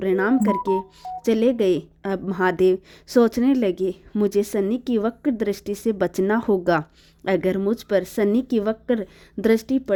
करके चले गए। अब महादेव सोचने लगे, मुझे शनि की वक्र दृष्टि से बचना होगा। अगर मुझ पर शनि की वक्र दृष्टि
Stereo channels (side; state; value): both; identical; correlation 1.00